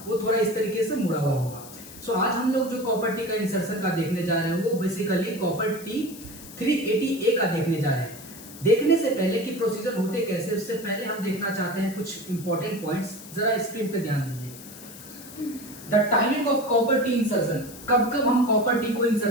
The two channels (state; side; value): noise; left; hiss, 16 dB below the sound